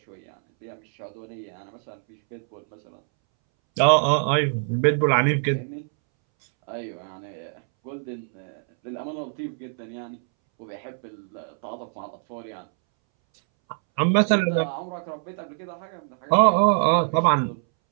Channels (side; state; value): left; silent; 62 dB below the other